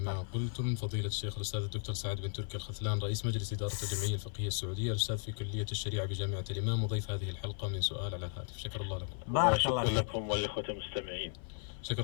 ما قلتم فضيلة الشيخ الأستاذ الدكتور سعد بن تركي الخثلان رئيس مجلس إدارة الجمعية الفقهية السعودية، الأستاذ في كلية الشريعة بجامعة الإمام، وضيف هذه الحلقة من سؤال على الهاتف. شكر الله لكم. بارك الله شكرا لكم والإخوة المستمعين.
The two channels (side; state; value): right; silent; 54 dB below the other